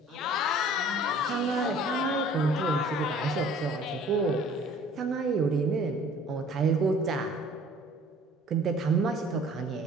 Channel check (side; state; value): both; normal; correlation 0.51